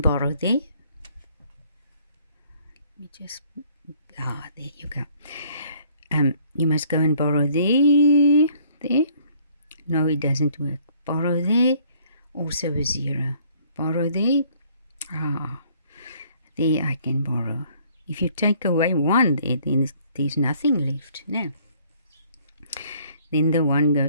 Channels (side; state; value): both; inverted; correlation -0.61